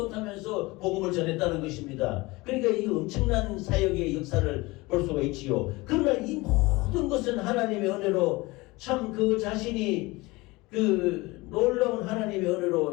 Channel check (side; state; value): right; quieter; 22.4 dB